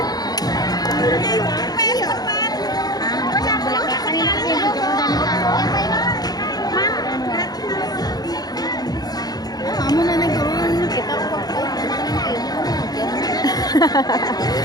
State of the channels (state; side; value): late; right; 0.19 ms